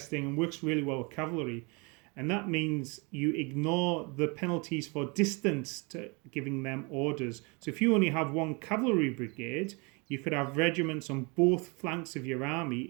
and works really well with cavalry. And that means you ignore the penalties for distance to giving them orders. So if you only have one cavalry brigade, you could have regiments on both flanks of your army.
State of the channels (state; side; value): quieter; left; 30.3 dB